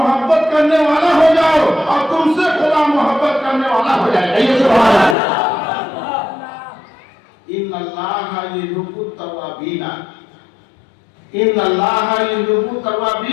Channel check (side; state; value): right; drops out; at 5.2 s